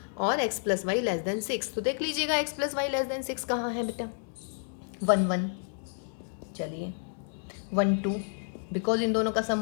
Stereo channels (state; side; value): silent; right; digital silence